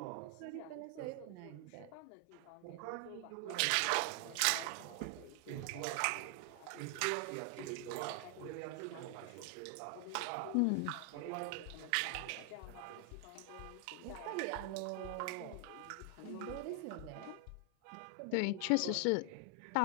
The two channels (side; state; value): both; different; correlation 0.00